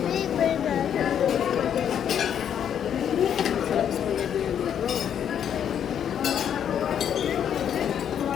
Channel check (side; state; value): right; quieter; 9.0 dB